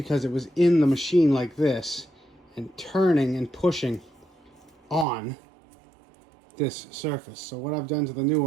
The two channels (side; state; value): left; drops out; at 5.1 s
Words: it was in the machine like this and turning and pushing on this surface. So what I've done to the new